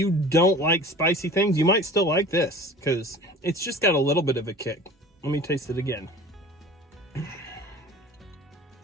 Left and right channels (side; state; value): both; normal; correlation 0.41